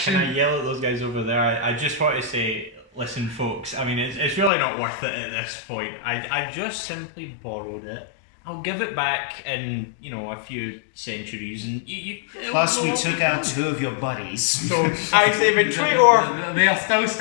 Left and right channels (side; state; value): right; drops out; at 4.5 s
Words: yell at those guys over there? I just want to say, listen, folks. I mean, it's really not worth it at this point. I just simply borrowed it. I'll give it back in, a few centuries, and you Plus, we took out 2 of your buddies. So I say betray or They are still